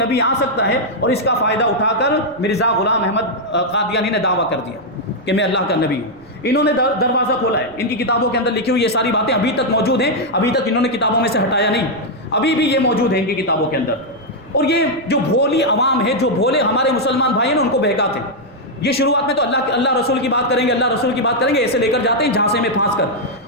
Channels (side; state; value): left; noise; rumble, 30 dB below the sound